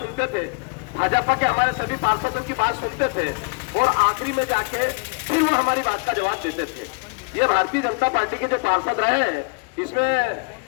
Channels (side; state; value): right; quieter; 33.1 dB